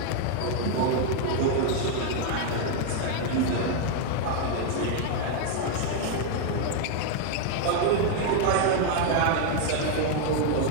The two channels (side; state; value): both; different; correlation 0.00